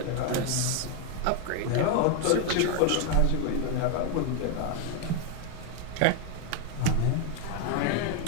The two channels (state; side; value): different; both; correlation 0.01